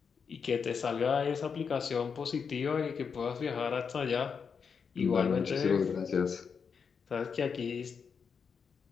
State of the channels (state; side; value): quieter; right; 6.1 dB